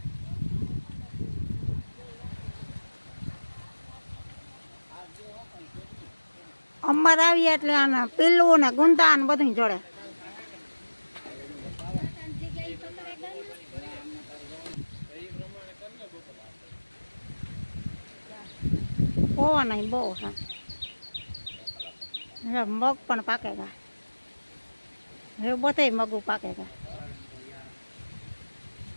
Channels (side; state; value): both; inverted; correlation -1.00